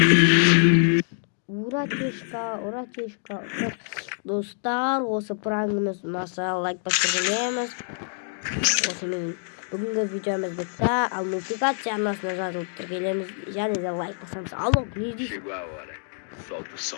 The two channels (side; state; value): right; silent; 61 dB below the other